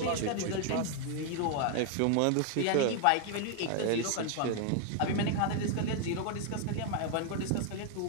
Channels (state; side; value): different; both; correlation 0.00